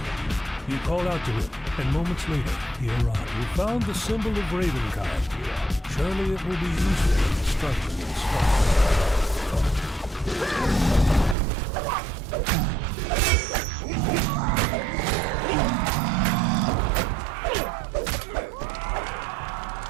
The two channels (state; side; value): drops out; left; at 11.4 s